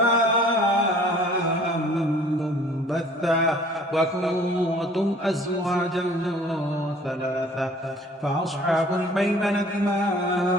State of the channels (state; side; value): normal; both; correlation 0.52